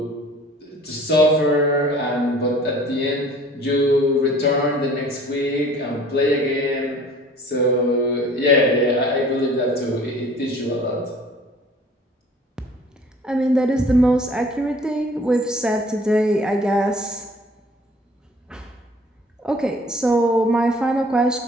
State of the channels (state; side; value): normal; both; correlation 0.50